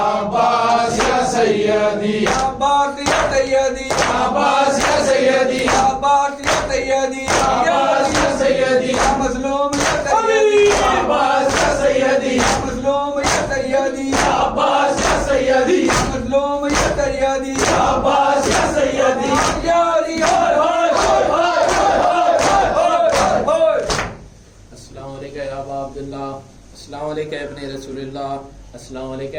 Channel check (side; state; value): both; identical; correlation 1.00